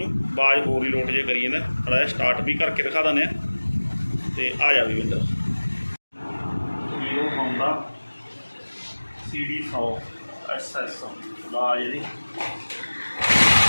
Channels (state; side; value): inverted; both; correlation -1.00